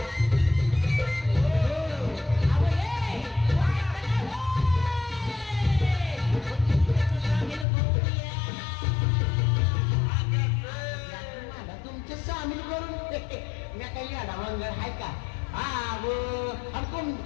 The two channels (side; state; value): right; drops out; at 7.7 s